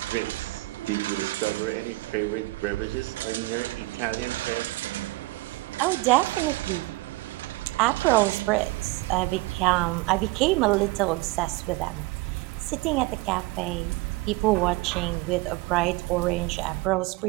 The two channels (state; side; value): quieter; left; 21.4 dB